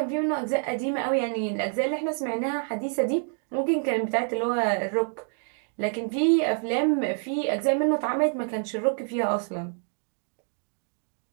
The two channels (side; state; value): left; silent; 56 dB below the other